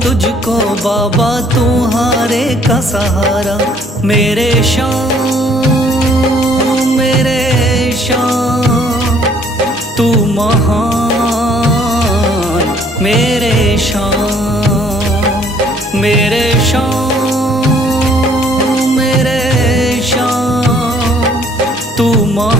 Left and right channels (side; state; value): both; normal; correlation 0.61